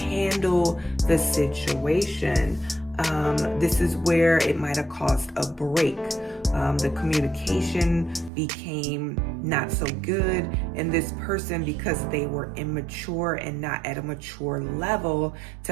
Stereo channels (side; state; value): left; drops out; at 8.3 s